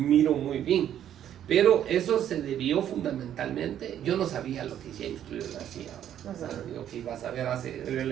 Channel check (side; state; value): left; quieter; 10.5 dB